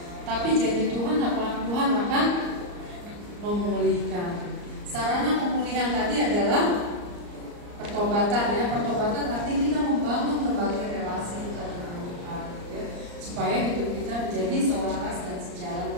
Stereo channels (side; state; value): left; late; 34 ms